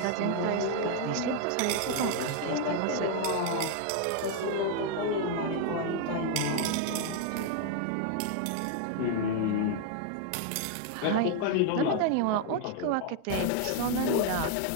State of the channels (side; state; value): both; different; correlation 0.00